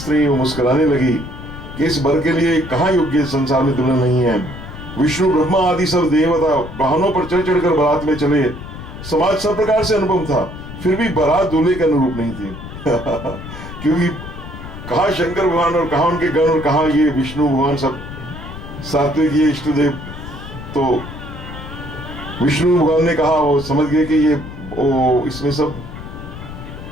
वो मुस्कुराने लगी कि इस वर के लिए कहाँ योग्य संसार में दुल्हन नहीं है। विष्णु ब्रह्मा आदि सब देवता वाहनों पर चढ़ चढ़कर बारात में चले। समाज सब प्रकार से अनुपम था, फिर भी बारात दूल्हे के अनुरूप नहीं थी। क्योंकि कहा शंकर भगवान और कहा उनके गण और कहा ये विष्णु भगवान, सब सात्विक ये इष्ट देव। तो विष्णु भगवान ने कहा, वो समझ गए कि ये इसमें सब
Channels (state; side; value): noise; left; rumble, 12 dB below the sound